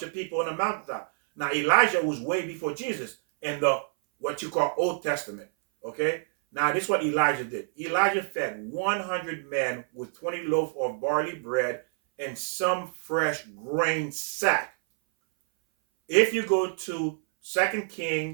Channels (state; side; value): silent; left; 57 dB below the other